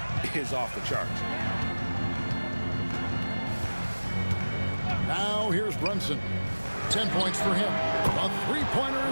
is off the charts. Now here's Brunson. 10 points for him. A three-pointer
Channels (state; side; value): inverted; both; correlation -1.00